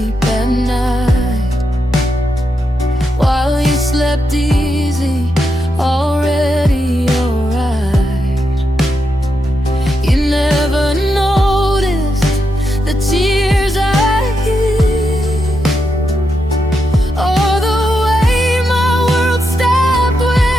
at night, while you slept easy, already alright. You never noticed the tears I hid, or the way my world stopped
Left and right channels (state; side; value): normal; both; correlation 0.84